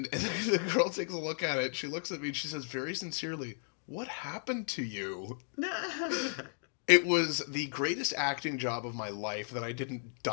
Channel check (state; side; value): silent; right; 55 dB below the other